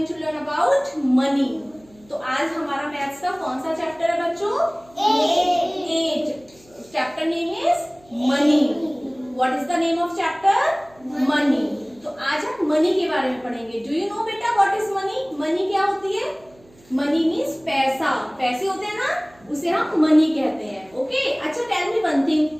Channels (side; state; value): right; noise; hum, 29 dB below the sound